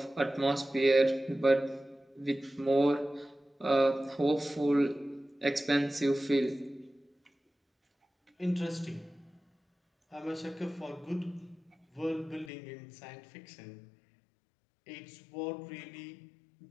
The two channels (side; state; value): right; drops out; at 12.5 s